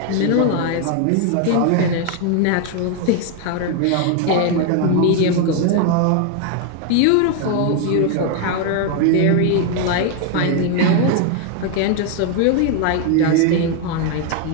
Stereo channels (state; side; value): different; both; correlation 0.01